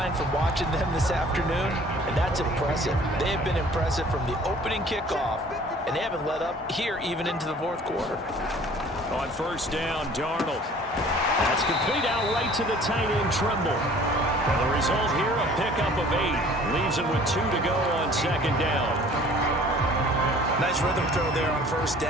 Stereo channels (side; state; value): both; normal; correlation 0.51